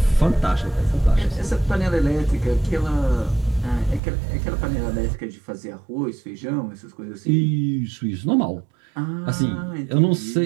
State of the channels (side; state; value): left; drops out; at 4.0 s